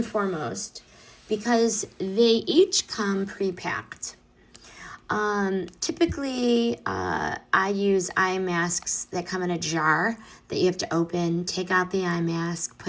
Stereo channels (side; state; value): both; identical; correlation 1.00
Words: foremost because they each come pre-packed. Typically, I use eye masks that come in a jar that you have to open, take out the eye mask,